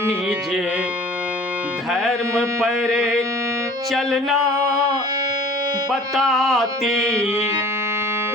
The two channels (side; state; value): both; normal; correlation 0.47